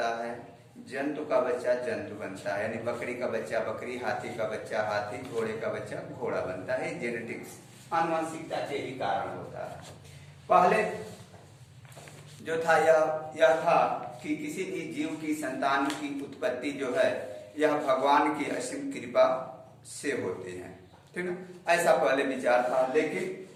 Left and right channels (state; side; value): identical; both; correlation 1.00